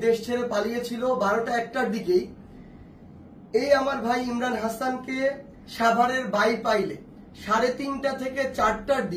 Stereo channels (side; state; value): both; identical; correlation 1.00